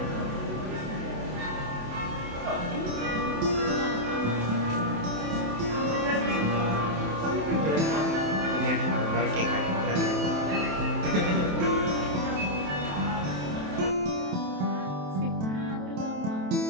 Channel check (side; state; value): left; late; 27 ms